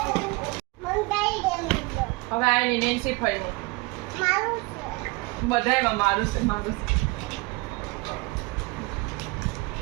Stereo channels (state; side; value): quieter; left; 24.8 dB